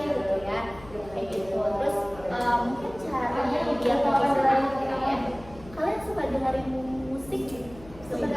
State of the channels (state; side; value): noise; left; hum, 19 dB below the sound